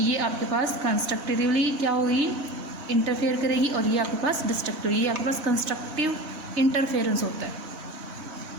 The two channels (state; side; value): late; left; 4.0 ms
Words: आपके पास कंस्ट्रक्टिवली क्या होगी, इंटरफेयर करेगी, और ये आपके पास डिस्ट्रक्टिव, ये आपके पास कंस्ट्रक्टिव इंटरफेरेंस होता है,